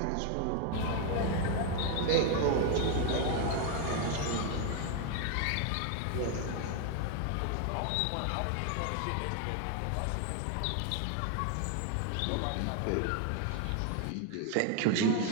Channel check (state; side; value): different; both; correlation 0.01